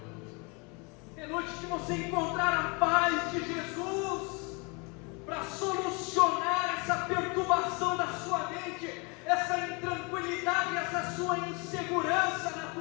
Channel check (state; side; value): quieter; right; 30.6 dB